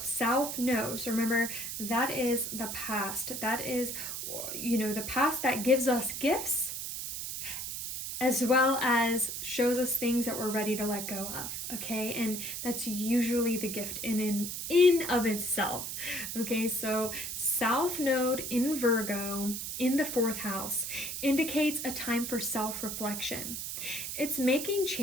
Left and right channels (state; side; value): noise; right; hiss, 5 dB below the sound